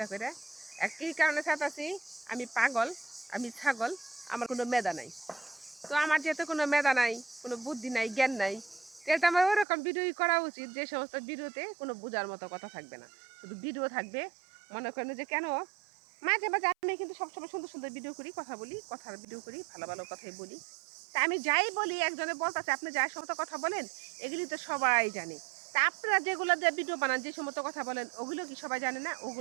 করে। আর কি কারণে ছাড়তাছি? আমি পাগল, আমি ছাগল, আমার কোনো মেধা নাই। তো আমার যেহেতু কোনো মেধা নাই, কোনো বুদ্ধি নাই, জ্ঞান নাই, তাহলে তো আমার ওরকম ভিডিওই করা উচিত যে সমস্ত ভিডিওতে কোনো বোঝার মতো কথা থাকবে না, শুধু ভিডিও থাকবে। মনে করেন যে কেন মাঝে মাঝে আমি কিন্তু সবসময় সুন্দর সুন্দর ভিডিও করি, কথা বলি, কথার ভিডিও করি, ভালো ভালো কথাই বলি। তা আমি যাই বলি একজনে বলতেছে আপনি যাই সমস্ত কথা বলেন এগুলি তো সবাই জানে। তা আপনারা যেগুলো দিয়ে ভিডিও বানান যে সমস্ত কথা বলেন ওগুলো কি সবাই জানে না?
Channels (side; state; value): left; drops out; at 9.7 s